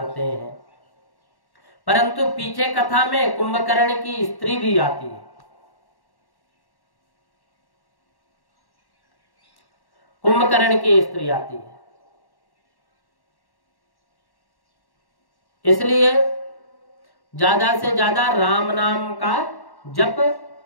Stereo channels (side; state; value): right; late; 1.1 ms